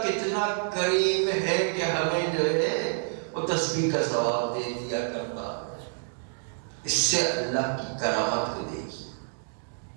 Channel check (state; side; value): silent; left; digital silence